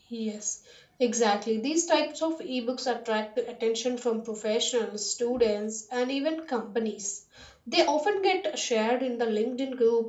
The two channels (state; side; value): identical; both; correlation 1.00